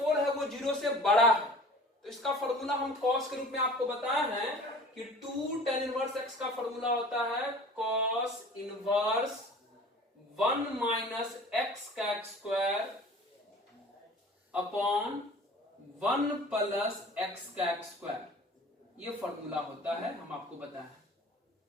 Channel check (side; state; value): both; normal; correlation 0.44